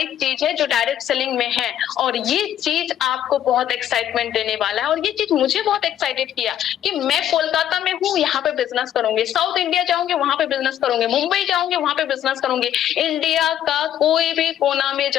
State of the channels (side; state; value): right; quieter; 10.9 dB